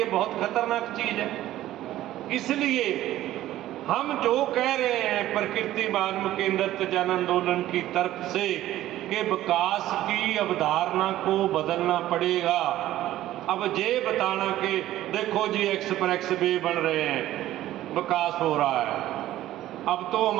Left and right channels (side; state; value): left; quieter; 14.2 dB